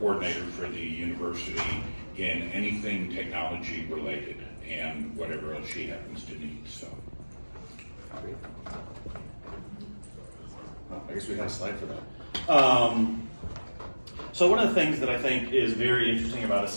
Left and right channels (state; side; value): inverted; both; correlation -1.00